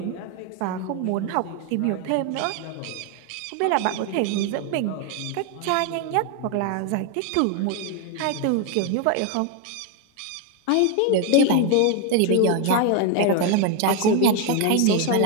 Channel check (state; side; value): different; both; correlation 0.01